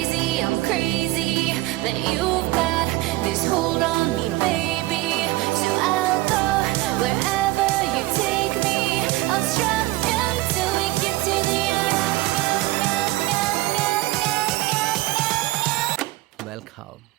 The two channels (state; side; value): quieter; left; 18.8 dB